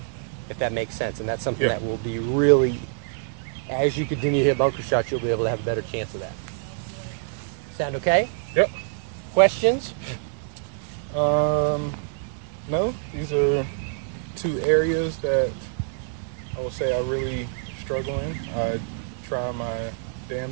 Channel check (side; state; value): left; silent; digital silence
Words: if that makes sense. And that's something that will be really, as you continue to hit bunker shots, you'll be able to have a better chance of that. Sound okay? Yep. Questions? No, these are two areas that I will say I really struggle in. I try my